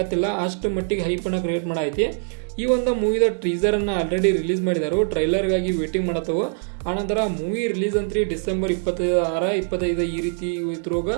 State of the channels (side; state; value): left; silent; 63 dB below the other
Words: ಅಷ್ಟು ಮಟ್ಟಿಗೆ ಹೈಪನ್ನು ಕ್ರಿಯೇಟ್ ಮಾಡೈತಿ. ಈ ಒಂದು ಮೂವಿದ ಟೀಸರನ್ನು ಆಲ್ರೆಡಿ ರಿಲೀಸ್ ಮಾಡಿದರು, ಟ್ರೈಲರ್ಗಾಗಿ ವೇಟಿಂಗ್ ಮಾಡತ್ತವು. ಆನಂತರ ಮೂವಿ ರಿಲೀಸ್ ಅಂತ್ರಿ ಡಿಸೆಂಬರ್ 26, 25 ಈ ರೀತಿ ಇದ್ರಾಗ